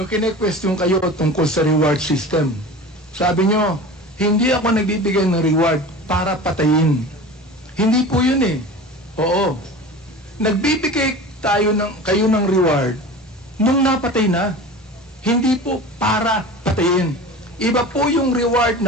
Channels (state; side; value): normal; both; correlation 0.35